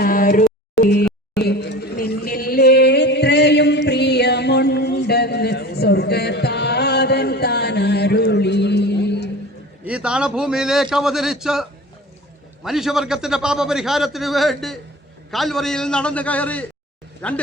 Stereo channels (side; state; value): both; normal; correlation 0.37